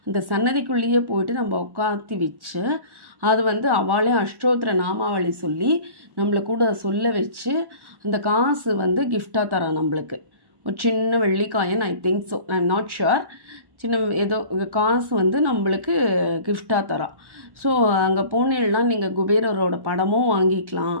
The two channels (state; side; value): late; left; 1.1 ms